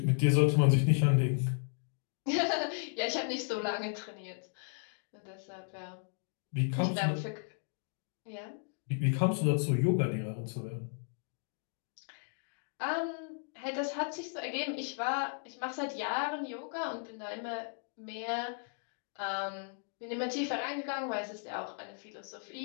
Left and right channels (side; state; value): right; silent; 54 dB below the other